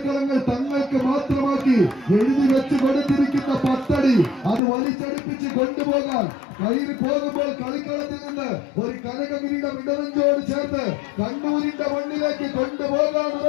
തങ്ങൾക്ക് മാത്രമാക്കി എഴുതി വെച്ച് കൊടുത്തിരിക്കുന്ന പത്തടി അത് വലിച്ചടിപ്പിച്ച് കൊണ്ടുപോകാൻ കയറി പോകുമ്പോൾ കളിക്കളത്തിൽ നിന്ന് ഒരു കനകഗിരിയുടെ ഇടവഞ്ചോട് ചേർത്ത് കണ്ണൂരിന്റെ മണ്ണിലേക്ക് കൊണ്ടുപോകാൻ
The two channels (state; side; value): drops out; right; at 4.6 s